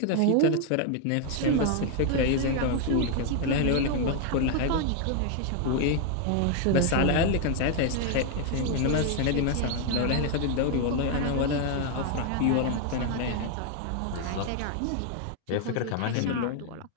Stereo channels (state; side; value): different; both; correlation 0.00